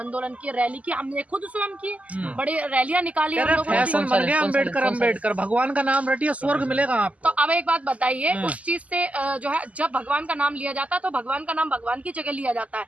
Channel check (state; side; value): late; left; 0.070 ms